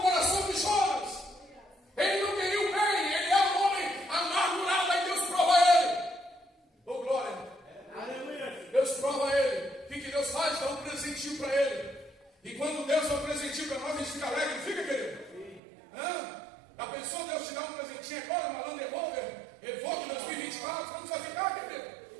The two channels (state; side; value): drops out; left; at 15.6 s